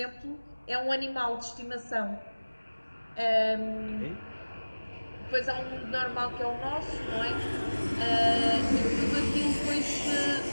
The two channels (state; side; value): inverted; both; correlation -1.00